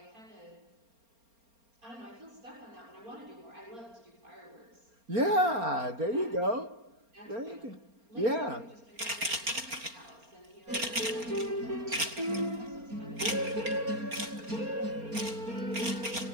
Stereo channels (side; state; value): left; late; 4.3 ms